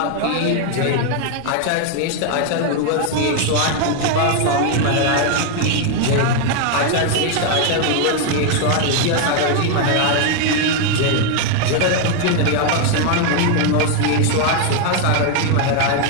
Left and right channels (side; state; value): both; different; correlation 0.01